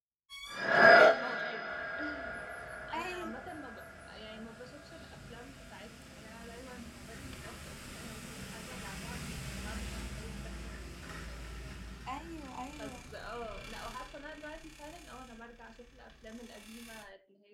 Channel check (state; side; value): identical; both; correlation 1.00